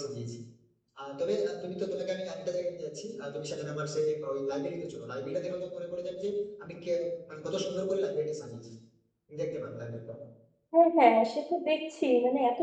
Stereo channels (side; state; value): both; identical; correlation 1.00